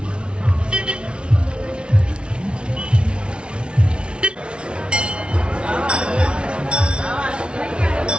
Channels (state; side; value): late; left; 0.057 ms